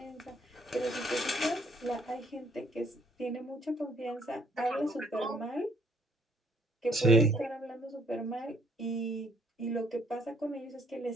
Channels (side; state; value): both; normal; correlation 0.65